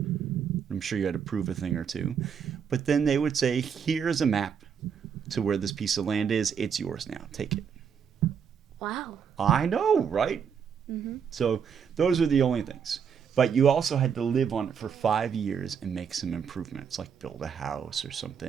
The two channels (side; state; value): left; quieter; 7.2 dB